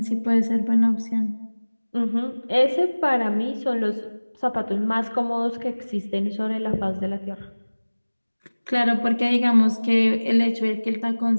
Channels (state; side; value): inverted; both; correlation -1.00